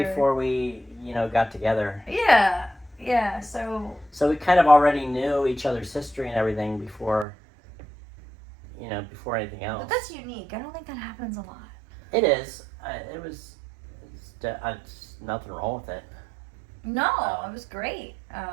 we, got together. Yeah, so... So we kind of already knew each other's history and everything before anything else. But that's unique. I don't think that happens a lot. It is. It's nothing wrong with it. No, it was great.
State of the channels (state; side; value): drops out; left; at 7.2 s